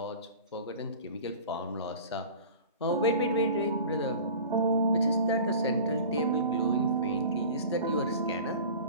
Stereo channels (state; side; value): inverted; both; correlation -0.40